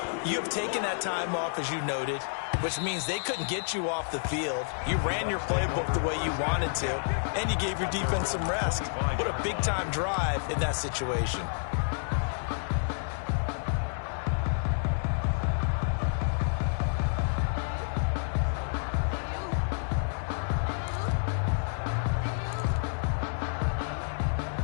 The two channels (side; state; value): right; silent; digital silence